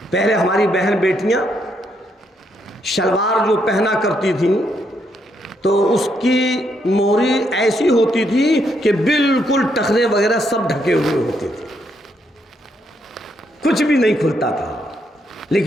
پہلے ہماری بہن بیٹیاں شلوار جو پہنا کرتی تھیں تو اس کی موہری ایسی ہوتی تھی کہ بالکل ٹخنے وغیرہ سب ڈھکے ہوئے ہوتے تھے، کچھ بھی نہیں کھلتا تھا.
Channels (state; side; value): normal; both; correlation 0.76